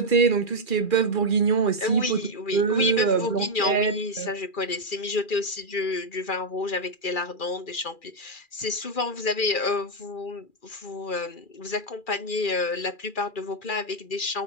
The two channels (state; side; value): late; right; 2.4 ms